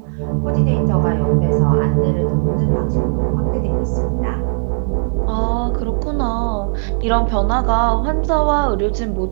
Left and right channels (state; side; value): silent; left; 63 dB below the other